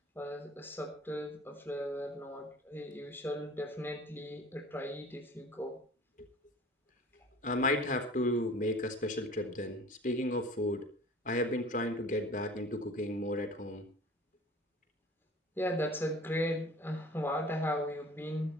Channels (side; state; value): both; normal; correlation 0.45